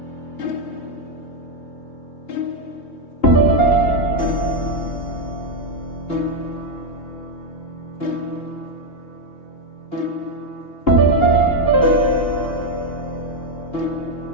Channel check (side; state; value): right; late; 2.8 ms